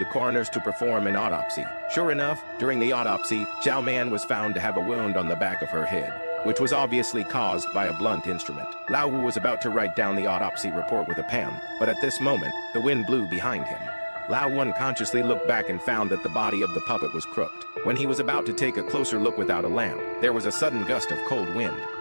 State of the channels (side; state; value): both; inverted; correlation -1.00